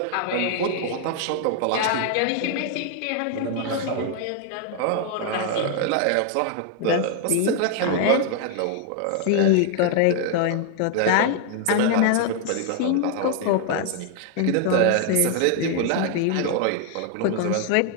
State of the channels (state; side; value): different; both; correlation 0.00